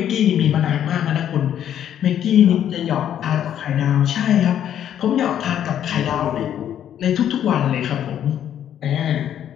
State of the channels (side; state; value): right; quieter; 10.2 dB